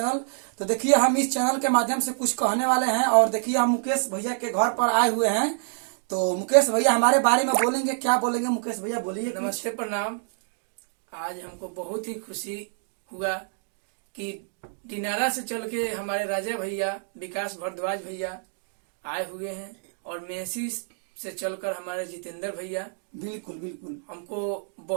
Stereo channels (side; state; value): left; silent; digital silence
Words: तो देखिए हम इस चैनल के माध्यम से कुछ कहने वाले हैं और देखिए हम मुकेश भैया के घर पर आए हुए हैं। तो मुकेश भैया हमारे बारे में बोलेंगे, क्या बोलेंगे मुकेश भैया, बोलिए। नमस्ते प्रणाम। आज हमको बहुत ही खुशी हुआ कि दिनारा से चल के हमारे राजा भैया विकास भारद्वाज भैया आए हुए हैं और मेसी से चलकर हमारे जितेंद्र भैया। बिल्कुल बिल्कुल हमको